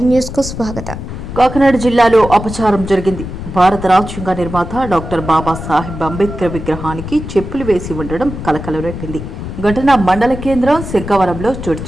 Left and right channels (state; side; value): noise; left; rumble, 8 dB below the sound